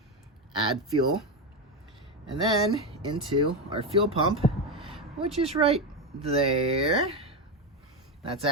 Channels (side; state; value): both; normal; correlation 0.12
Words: add fuel. And then into our fuel pump, which is right there. That's